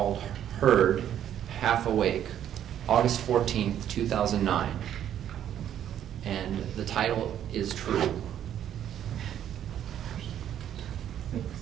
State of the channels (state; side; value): quieter; left; 10.4 dB